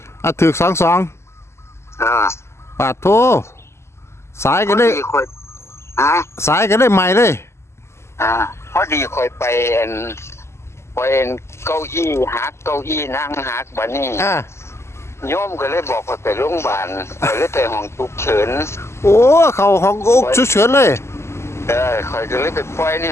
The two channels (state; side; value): late; right; 0.13 ms